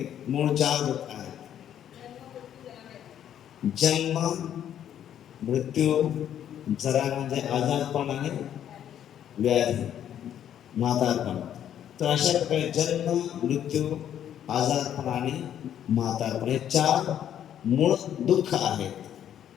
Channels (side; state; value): right; quieter; 10.2 dB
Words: मूळ 4 दुःख आहेत। जन्म, मृत्यू, जरा म्हणजे आजारपण आणि व्याधी, म्हातारपण। तर अशा प्रकारे जन्म, मृत्यू, आजारपण आणि म्हातारपण हे 4 मूळ दुःख